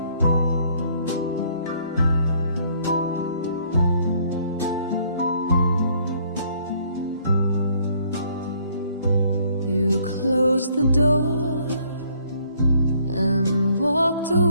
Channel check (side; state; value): both; inverted; correlation -0.64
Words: You closed the door and walked